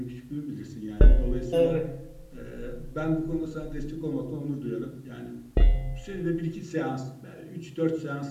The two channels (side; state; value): both; identical; correlation 1.00